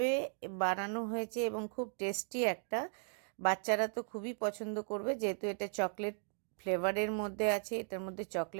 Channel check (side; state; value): left; silent; 53 dB below the other